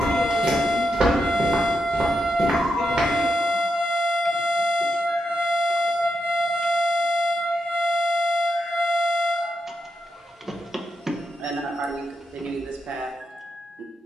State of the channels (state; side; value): normal; both; correlation 0.84